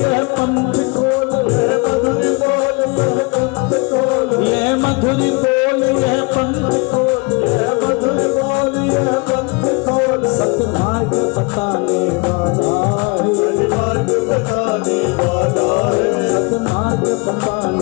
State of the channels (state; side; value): quieter; right; 29.6 dB